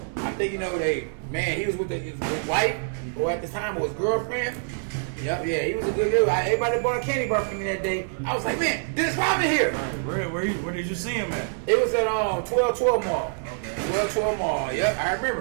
I think, you know, he was with his wife, or at the time was girlfriend. Yep, yeah, he was a good dude. Everybody bought a candy bar for me that day. I was like, man, Dennis Rodman here. Where did you see him at? It was at 1212 Mall. Okay. 1212 Mall. Yep, I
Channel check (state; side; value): silent; left; 61 dB below the other